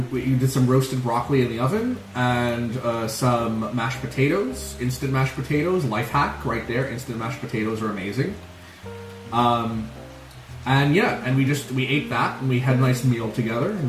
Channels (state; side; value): identical; both; correlation 1.00